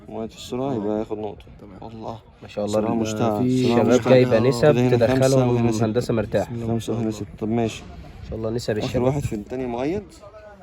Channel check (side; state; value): both; identical; correlation 1.00